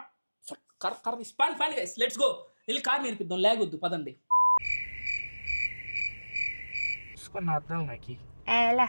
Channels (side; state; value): both; inverted; correlation -1.00